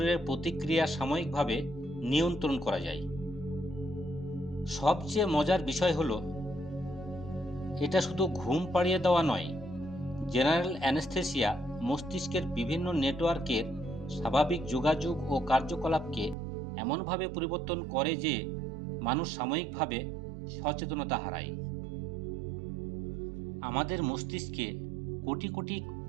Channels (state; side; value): drops out; left; at 16.4 s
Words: প্রতিক্রিয়া সাময়িকভাবে নিয়ন্ত্রণ করা যায়। সবচেয়ে মজার বিষয় হলো, এটা শুধু ঘুম পাড়িয়ে দেওয়া নয়। জেনারেল অ্যানেস্থেসিয়া মস্তিষ্কের বিভিন্ন নেটওয়ার্কের স্বাভাবিক যোগাযোগ ও কার্যকলাপকে এমনভাবে পরিবর্তন করে যে মানুষ সাময়িকভাবে সচেতনতা হারায়। আমাদের মস্তিষ্কে কোটি কোটি